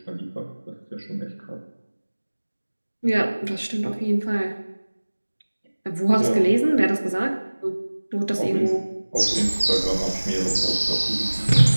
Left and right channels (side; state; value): both; inverted; correlation -1.00